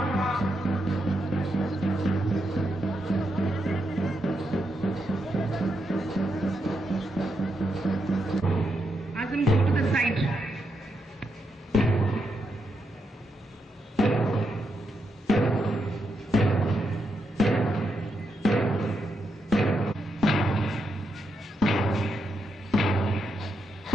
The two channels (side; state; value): both; normal; correlation 0.82